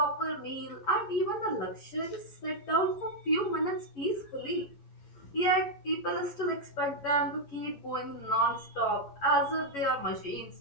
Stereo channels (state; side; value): late; right; 11 ms